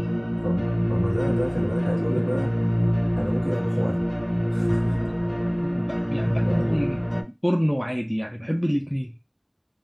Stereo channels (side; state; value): both; identical; correlation 1.00